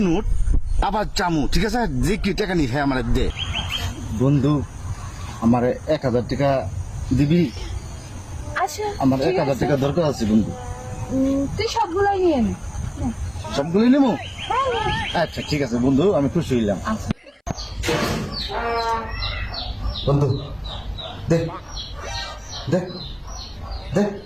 নোট, আবার চামু, ঠিক আছে, যে কি টাকা নি হ্যাঁ আমার দে। বন্ধু, আমার 1000 টাকা দিবি? আচ্ছা, আমার ঠিক 1000 আছে। টাকা দরকার আছে বন্ধু। তুই সবগুলাই নিয়ে নে। সবগুলি নেবো? হ্যাঁ, নে। আচ্ছা ঠিক আছে বন্ধু, আমি খুশি হইলাম। আচ্ছা। বন্ধু দেখ, দেখ, দেখ,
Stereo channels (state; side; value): identical; both; correlation 1.00